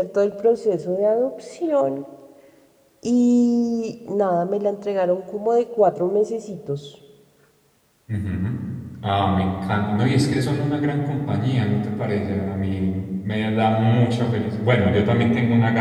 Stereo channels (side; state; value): both; identical; correlation 1.00